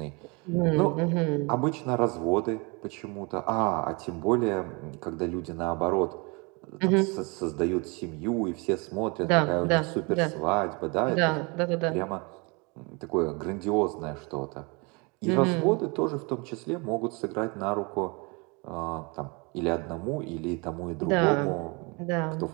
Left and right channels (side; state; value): left; quieter; 29.8 dB